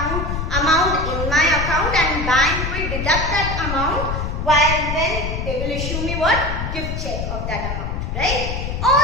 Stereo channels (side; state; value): left; noise; rumble, 3 dB below the sound